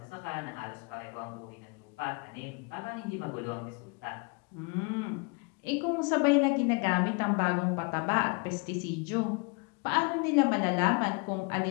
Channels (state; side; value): quieter; right; 32.0 dB